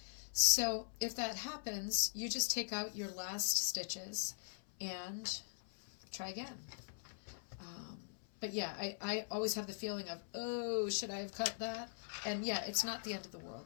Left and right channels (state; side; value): silent; right; 50 dB below the other